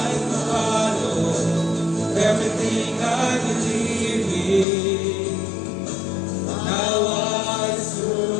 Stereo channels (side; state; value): right; drops out; at 4.7 s